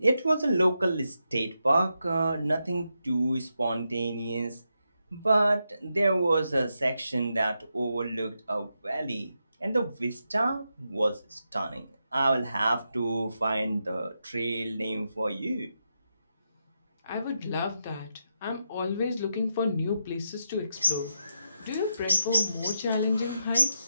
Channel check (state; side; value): inverted; both; correlation -0.84